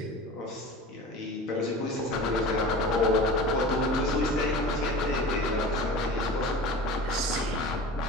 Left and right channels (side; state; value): both; normal; correlation 0.35